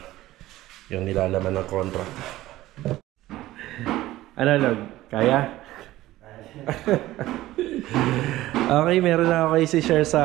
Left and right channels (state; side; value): quieter; left; 16.0 dB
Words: yung nilalaman ng contract. Ano, Log? Kaya? Okay, meron na ako kayo si-share